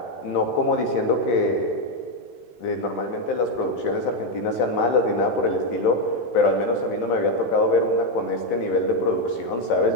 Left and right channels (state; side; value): late; right; 16 ms